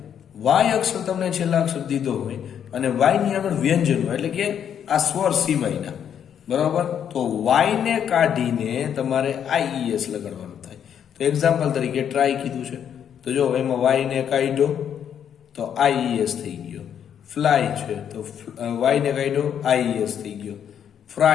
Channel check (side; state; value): right; quieter; 8.8 dB